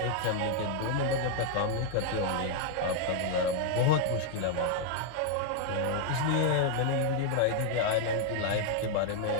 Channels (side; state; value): both; different; correlation 0.00